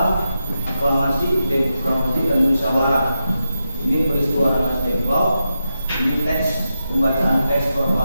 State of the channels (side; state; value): both; inverted; correlation -0.88